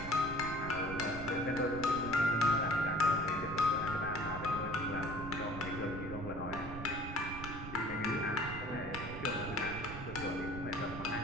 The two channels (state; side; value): noise; right; rumble, 9 dB below the sound